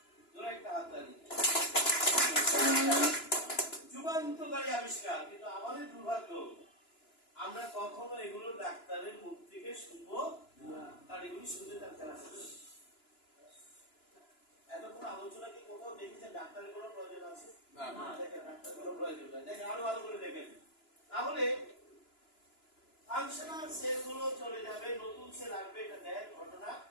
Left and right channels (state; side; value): late; right; 2.9 ms